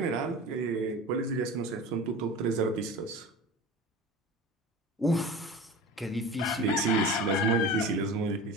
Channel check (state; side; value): normal; both; correlation 0.34